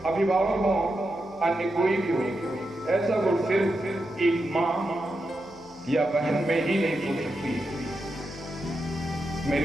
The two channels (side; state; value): left; noise; hum, 24 dB below the sound